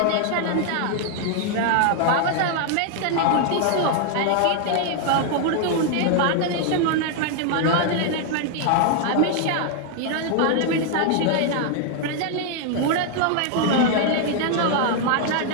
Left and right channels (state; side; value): different; both; correlation 0.00